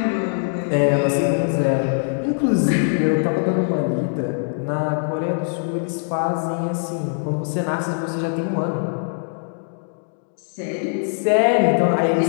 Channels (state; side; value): silent; right; digital silence